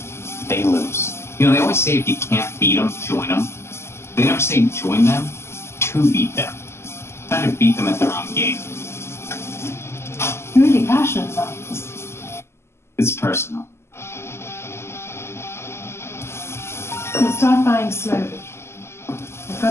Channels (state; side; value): late; right; 0.12 ms